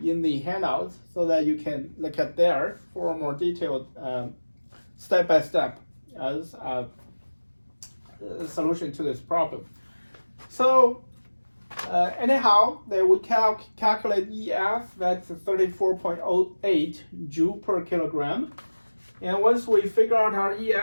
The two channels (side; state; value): both; inverted; correlation -1.00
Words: in the handouts, so that you can look at there for a more detailed step-by-step solution to this problem. So anyhow, they would calculate EF, that's 34.08 joule per kilogram. And once we figure out our